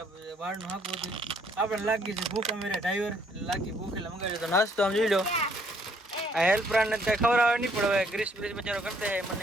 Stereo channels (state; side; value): normal; both; correlation 0.66